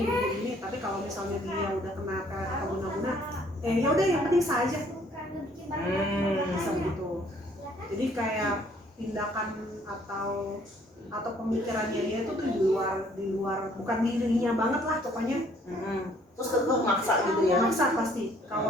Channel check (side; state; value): both; normal; correlation 0.61